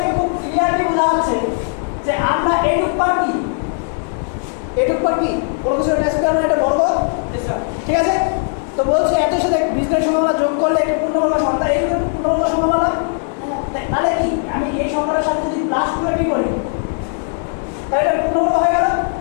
খুব ক্লিয়ারলি বোঝা যাচ্ছে যে আমরা এইটুক পার কি কোনো কিছু একটা স্কয়ার মানে এটা বর্গ ঠিক আছে তো বলছে এত সাথে বীজগণিত সম্ভাবনা যোগ করলে একটু পূর্ণবর্গ সংখ্যা এইটুকু পূর্ণবর্গ সম্ভাবনা তাহলে কি আমি এই সংখ্যাটার সাথে যদি প্লাস 2ab করি তাহলে এটা পূর্ণবর্গ হয়ে গেল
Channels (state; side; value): silent; right; 60 dB below the other